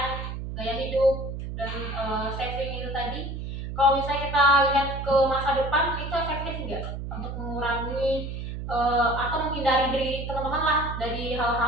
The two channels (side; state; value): right; noise; hum, 6 dB below the sound